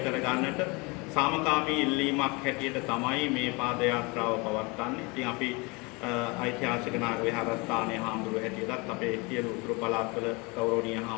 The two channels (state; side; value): quieter; right; 27.4 dB